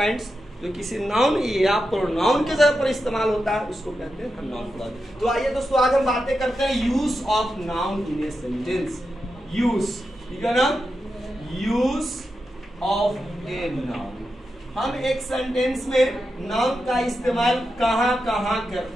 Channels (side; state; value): both; normal; correlation 0.89